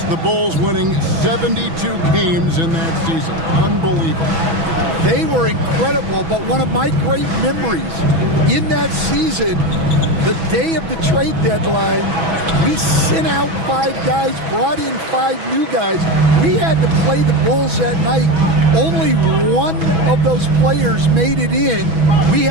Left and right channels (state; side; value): late; left; 6.1 ms